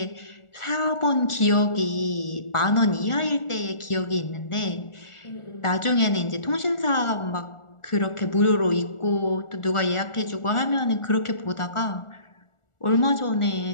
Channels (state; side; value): late; right; 1.4 ms